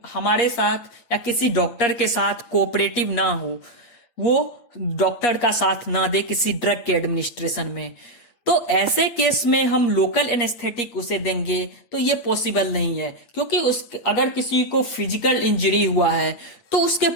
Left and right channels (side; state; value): right; late; 8.4 ms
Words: साथ या किसी डॉक्टर के साथ कोऑपरेटिव ना हो, वो डॉक्टर का साथ ना दे किसी ड्रग के एडमिनिस्ट्रेशन में, तो ऐसे केस में हम लोकल एनेस्थेटिक उसे देंगे तो ये पॉसिबल नहीं है। क्योंकि अगर किसी को फिजिकल इंजरी हुआ है तो उसके